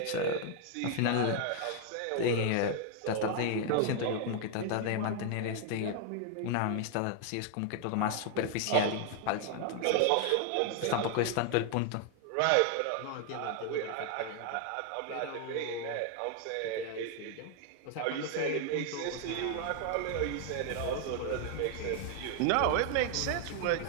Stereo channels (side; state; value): both; different; correlation 0.00